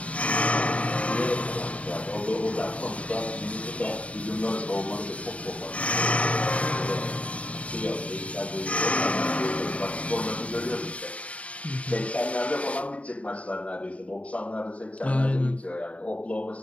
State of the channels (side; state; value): right; late; 0.065 ms